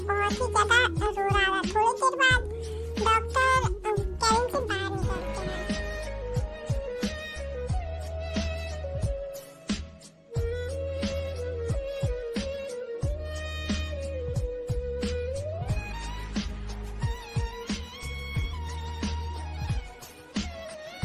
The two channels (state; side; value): identical; both; correlation 1.00